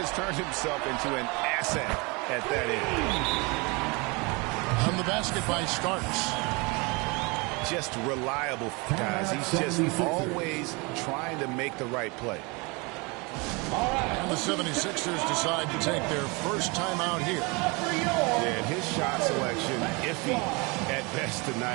turned himself into an asset at that end. On the basket by Starks. Just reliable, guys. He's just always trying to make the right play. And the 76ers decide to take their first time out here. And his shot selection, iffy at best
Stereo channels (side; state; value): left; quieter; 28.2 dB